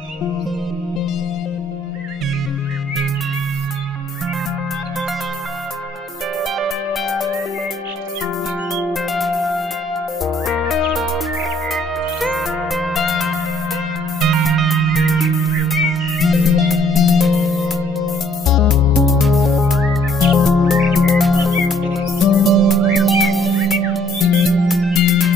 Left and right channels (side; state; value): both; normal; correlation 0.63